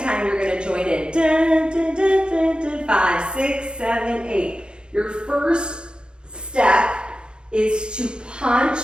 time, you're gonna join in. Dun, dun, dun, dun, dun, 5, 6, 7, 8. Your first step is to punch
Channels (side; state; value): left; late; 0.051 ms